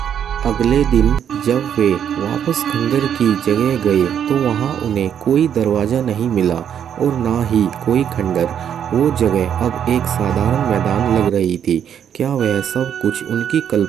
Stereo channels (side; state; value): left; quieter; 8.9 dB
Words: अगले दिन जब वे वापस खंडर की जगह गए तो वहां उन्हें कोई दरवाज़ा नहीं मिला और ना ही कोई खंडर। वो जगह अब एक साधारण मैदान लग रही थी। क्या वह सब कुछ उनकी